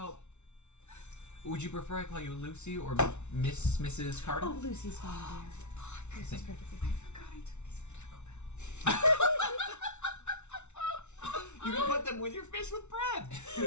would you prefer I call you Lucy or Mrs. Carter? Oh, Lucy's fine, dear. Lucy's Thank- perfectly fine. Forgot I took these from Taco Bell. You can put them with your fish with bread.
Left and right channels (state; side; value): late; right; 0.82 ms